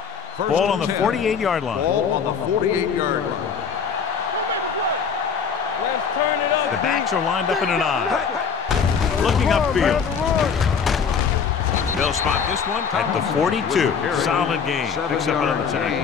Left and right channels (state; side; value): quieter; right; 6.4 dB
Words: Ball on the 48-yard line. Ball on the 48-yard line. Don't make the play. Let's turn it up. The backs are lined up in an I. Looking upfield. They'll spot this one at the 42. Solid game. Picks up another